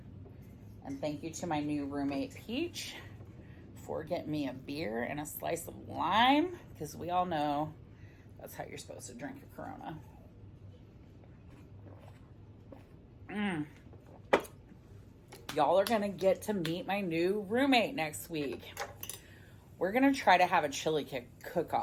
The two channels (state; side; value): identical; both; correlation 1.00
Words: And thank you to my new roommate Peach for getting me a beer and a slice of lime, because we all know that's how you're supposed to drink a Corona. Y'all are gonna get to meet my new roommate next week. We're gonna try to have a chili